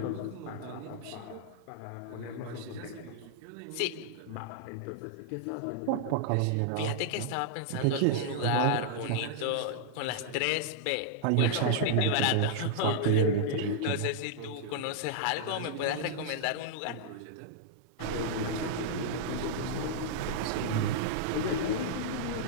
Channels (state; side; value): different; both; correlation -0.01